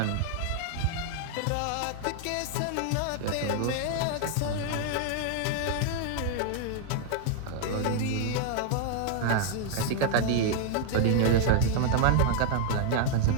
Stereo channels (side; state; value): both; different; correlation 0.00